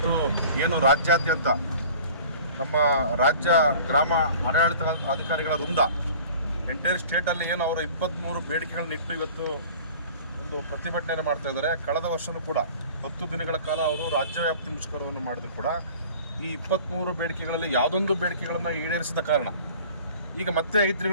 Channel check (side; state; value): both; inverted; correlation -0.45